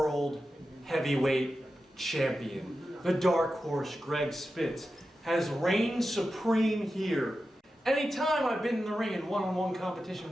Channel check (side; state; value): both; normal; correlation 0.92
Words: heavyweight champion, the dark horse Greg Spitz, has reigned supreme here. Anytime I've been in the ring in one-on-one